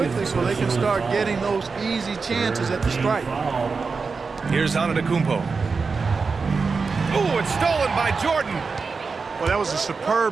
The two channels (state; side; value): quieter; left; 4.7 dB